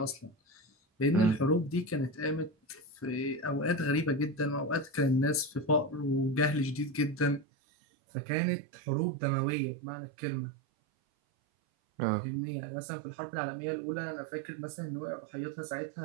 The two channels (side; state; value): left; drops out; at 7.5 s